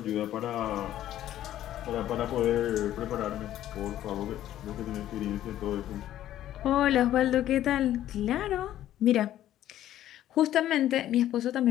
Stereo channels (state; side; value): quieter; right; 12.6 dB